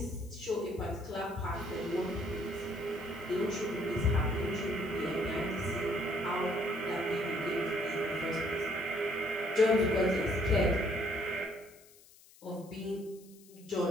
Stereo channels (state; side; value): noise; left; hiss, 24 dB below the sound